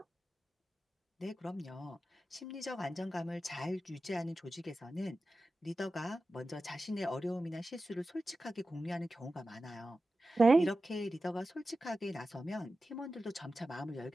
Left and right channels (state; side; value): normal; both; correlation 0.93